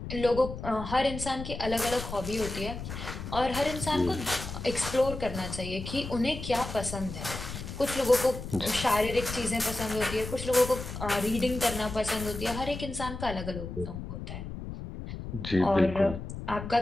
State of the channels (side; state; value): left; noise; rumble, 8 dB below the sound